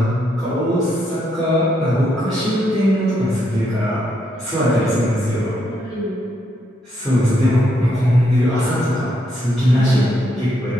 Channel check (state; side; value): normal; both; correlation 0.77